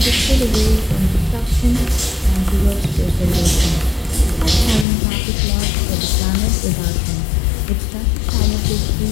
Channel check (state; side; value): drops out; right; at 4.9 s